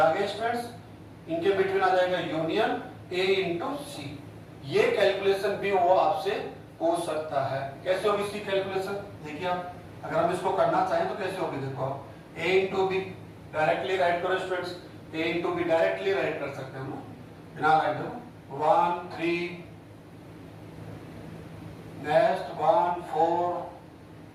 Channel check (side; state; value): both; identical; correlation 1.00